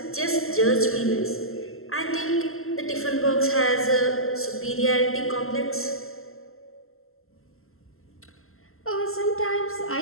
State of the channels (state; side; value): late; right; 0.62 ms